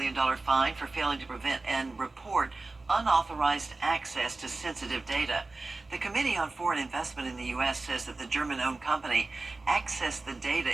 fine for failing to prevent and report unauthorized access to sensitive data. The Committee on Foreign Investment in the U.S. says that the German-owned company accessed the data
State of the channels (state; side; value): quieter; left; 3.4 dB